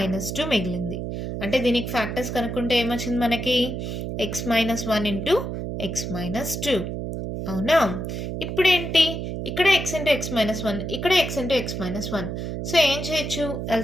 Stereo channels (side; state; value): right; noise; hum, 4 dB below the sound